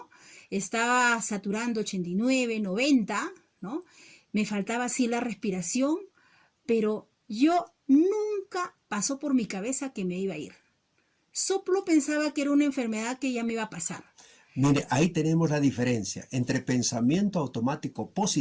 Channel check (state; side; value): identical; both; correlation 1.00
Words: Estaba saturando 89, 90, ¿no? Me faltaba así la respiración, pero yo nunca pasó por mi cabeza que me iba a ir. Solo pensaba que era una enfermedad que ya me iba a pasar. Mire, ahí tenemos la diferencia entre pensamiento automático